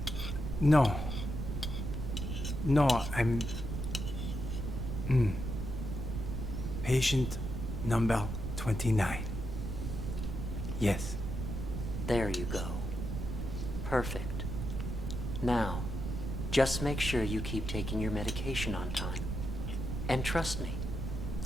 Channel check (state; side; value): noise; right; rumble, 4 dB below the sound